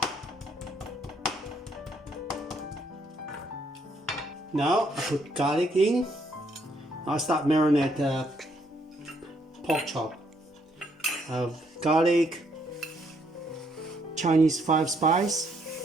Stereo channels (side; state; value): both; normal; correlation 0.71